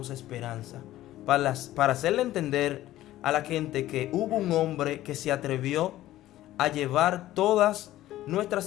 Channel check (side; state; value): right; quieter; 14.7 dB